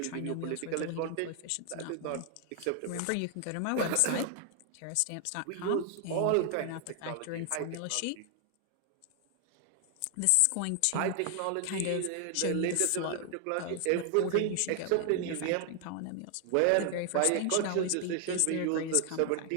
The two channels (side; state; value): both; different; correlation 0.00